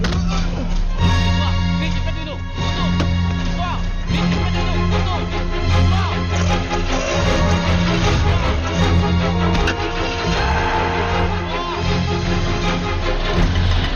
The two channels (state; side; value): identical; both; correlation 1.00